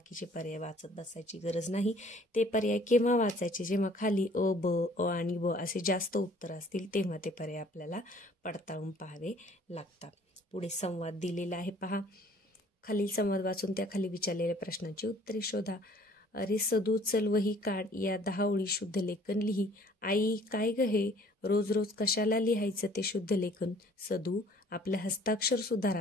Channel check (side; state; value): both; normal; correlation 0.55